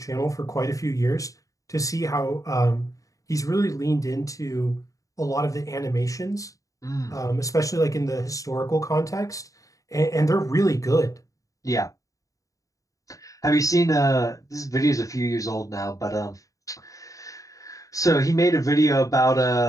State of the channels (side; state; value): right; late; 0.16 ms